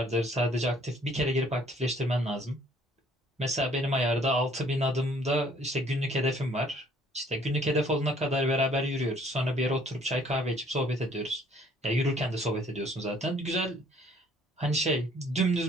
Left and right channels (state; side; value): normal; both; correlation 0.59